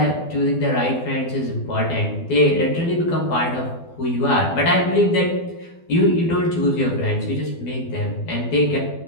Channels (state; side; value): late; right; 12 ms